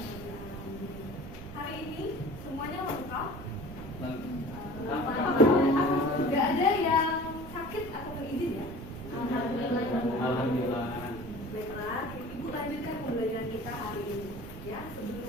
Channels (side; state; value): right; noise; rumble, 12 dB below the sound